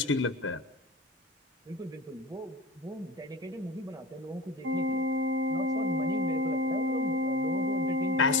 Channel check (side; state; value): both; normal; correlation 0.31